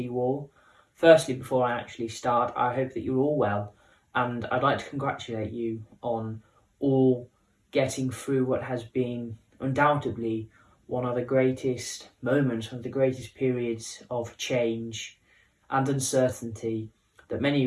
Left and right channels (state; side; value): identical; both; correlation 1.00